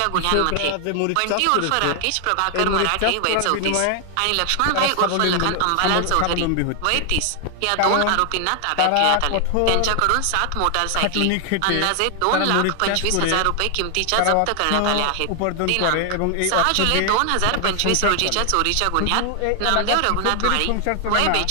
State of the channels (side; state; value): both; different; correlation 0.00